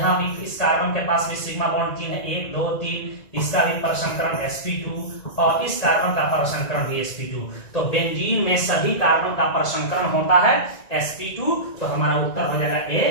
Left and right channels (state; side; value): late; right; 1.9 ms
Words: भी इस कार्बन के पास भी सिग्मा बॉन्ड 3 है, 1 2 3, इसका भी परसंकरण sp2, और इस कार्बन का परसंकरण भी sp2। तो बेंजीन में सभी कार्बन का परसंकरण होता है sp2, तो हमारा उत्तर हो जाएगा